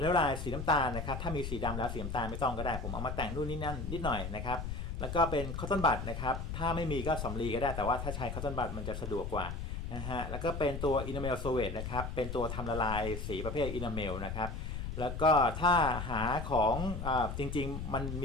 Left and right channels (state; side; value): noise; left; rumble, 5 dB below the sound